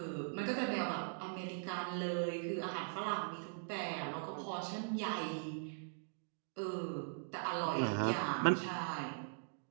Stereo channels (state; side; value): silent; left; digital silence